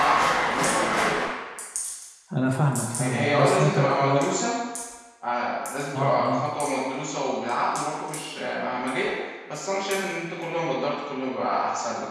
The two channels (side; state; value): both; identical; correlation 1.00